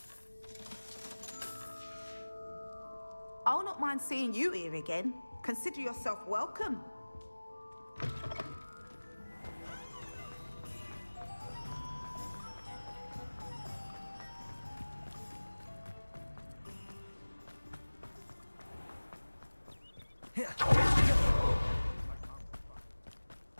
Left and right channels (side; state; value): both; inverted; correlation -1.00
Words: I'll not mind seeing you here again. Consider yourself welcome.